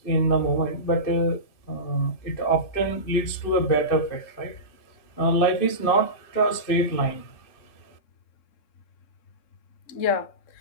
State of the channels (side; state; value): right; late; 2.6 ms